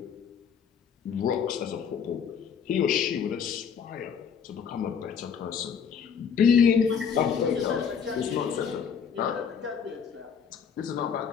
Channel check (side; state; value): right; quieter; 7.1 dB